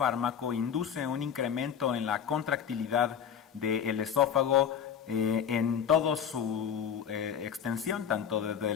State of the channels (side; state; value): right; quieter; 8.2 dB